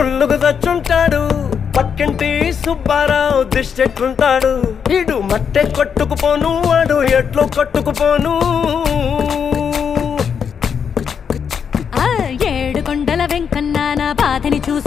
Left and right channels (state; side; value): quieter; right; 7.1 dB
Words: తెచ్చుంటాడు. పక్కింటి సుబ్బారావు దిష్టెట్లుంటాడు. ఇడు మట్టె కొట్టుకుపోను, వాడు ఎట్లు కొట్టుకుపోను. ఆ 7 కొండల వెంకన్న నా బాధని